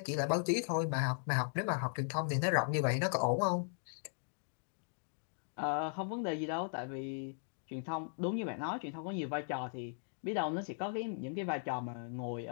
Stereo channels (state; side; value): silent; right; digital silence